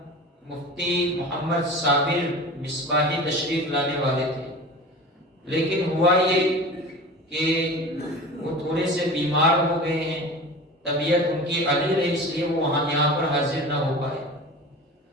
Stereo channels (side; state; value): both; normal; correlation 0.35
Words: مفتی محمد صابر مصباحی تشریف لانے والے تھے، لیکن ہوا یہ کہ وہ تھوڑے سے بیمار ہو گئے ہیں، طبیعت ان کی علیل ہے، اس لیے وہ یہاں پر حاضر نہ ہو پائے،